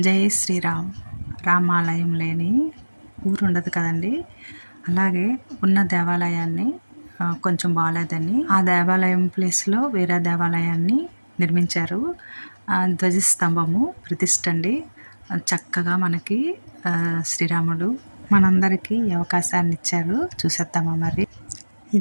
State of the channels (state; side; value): inverted; both; correlation -1.00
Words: జై శ్రీరామ్. రామాలయం లేని ఊరు ఉండదు కదండి. అలాగే ఉన్న దేవాలయాన్ని కొంచెం బాగాలేదని ఆ దేవాలయం ప్లేస్లో వేరే దేవాలయాన్ని నిర్మించారు. ధ్వజస్తంభము ప్రతిష్ఠ అండి. చక్కగా మనకి శ్రీరాముడు మనందరికీ ఈ అవకాశాన్ని ఇచ్చారు. చూసేద్దామా మరి.